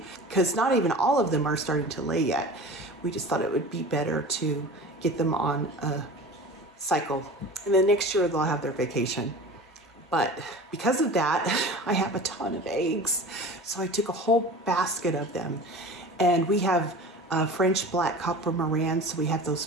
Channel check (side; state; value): both; normal; correlation 0.37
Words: because not even all of them are starting to lay yet. We just thought it would be better to get them on a cycle, and then next year they'll have their vacation. But because of that, I have a ton of eggs. So I took a whole basket of them. And we have French black copper Morans, so we have those